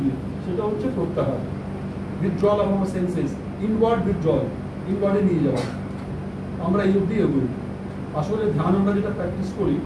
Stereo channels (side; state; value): both; identical; correlation 1.00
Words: দিয়ে। সেটা হচ্ছে প্রত্যাহার। Withdrawal of our senses, inward withdrawal, ইনওয়ার্ডে নিয়ে যাওয়া। আমরা এই অবধি এগোই। আসলে ধ্যান আমরা যেটা প্র্যাকটিস করি